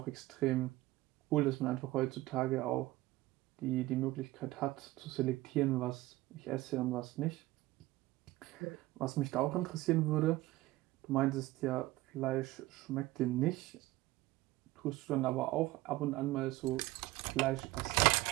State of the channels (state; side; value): quieter; left; 18.3 dB